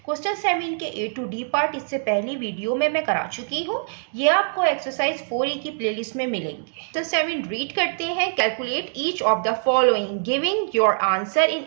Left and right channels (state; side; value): silent; left; digital silence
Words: क्वेश्चन 7 के A to D पार्ट इससे पहली वीडियो में मैं करा चुकी हूँ। ये आपको एक्सरसाइज 4E की प्लेलिस्ट में मिलेंगे। क्वेश्चन 7 रीड करते हैं। Calculate each of the following giving your answer in